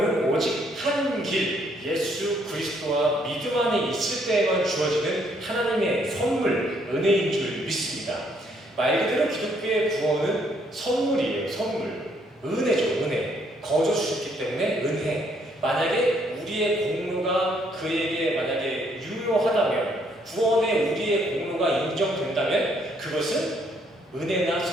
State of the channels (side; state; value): both; normal; correlation 0.69